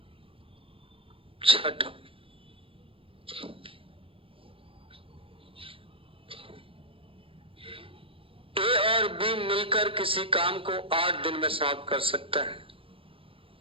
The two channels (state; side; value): late; left; 0.26 ms